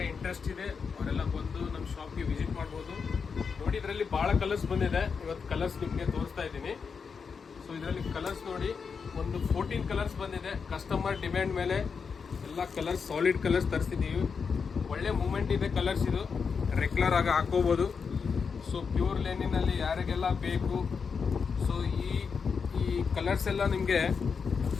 ಇಂಟ್ರೆಸ್ಟ್ ಇದೆ ಅವರೆಲ್ಲ ಬಂದು ನಮ್ಮ ಶಾಪ್ಗೆ ವಿಸಿಟ್ ಮಾಡ್ಬೋದು. ನೋಡಿ, ಇದರಲ್ಲಿ ಭಾಳ ಕಲರ್ಸ್ ಬಂದಿದೆ. ಇವತ್ತು ಕಲರ್ಸ್ ನಿಮಗೆ ತೋರಿಸ್ತಾ ಇದ್ದೀನಿ. ಸೊ ಇದರಲ್ಲಿ ಕಲರ್ಸ್ ನೋಡಿ, ಒಂದು 14 ಕಲರ್ಸ್ ಬಂದಿದೆ. ಕಸ್ಟಮರ್ ಡಿಮ್ಯಾಂಡ್ ಮೇಲೆ ಎಲ್ಲ ಕಲರ್ಸ್, ಸಾಲಿಡ್ ಕಲರ್ಸ್ ತರಿಸಿದ್ದೀವಿ. ಒಳ್ಳೆ ಮೂಮೆಂಟ್ ಇದೆ ಕಲರ್ಸ್, ಇದು ರೆಗ್ಯುಲರ್ ಆಗಿ ಹಾಕೋಬೋದು. ಸೊ ಪ್ಯೂರ್ ಲೆನಿನಲ್ಲಿ ಯಾರಿಗೆಲ್ಲ ಬೇಕು, ಸೊ ಈ ಕಲರ್ಸ್ ಎಲ್ಲ ನಿಮಗೆ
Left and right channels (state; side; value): quieter; right; 5.7 dB